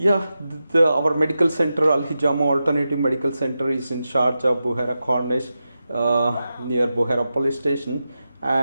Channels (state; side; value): inverted; both; correlation -0.90